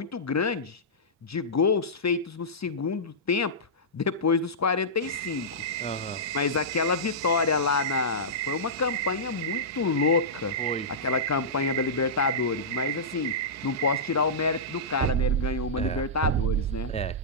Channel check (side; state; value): both; normal; correlation -0.15